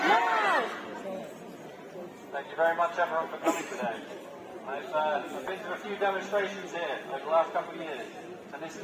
Thank you very much, everyone, for coming today. I've been to a few demonstrations here over the last couple of years, and this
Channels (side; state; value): both; identical; correlation 1.00